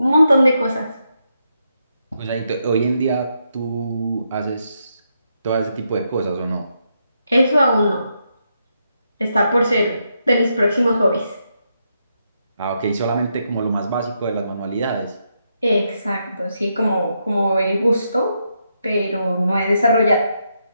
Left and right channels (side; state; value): both; inverted; correlation -0.81